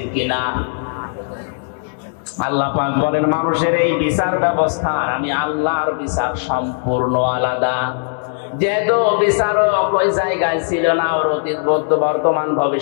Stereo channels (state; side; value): silent; right; 64 dB below the other